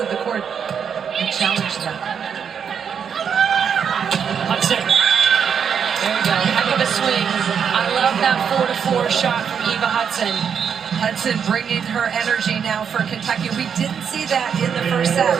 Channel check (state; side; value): quieter; left; 7.3 dB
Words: the court and challenge them. Hudson. There we go. Heck of a swing. I love that 4-4 shot from Eva Hudson. Hudson bringing her energy now for Kentucky. We didn't see that in the first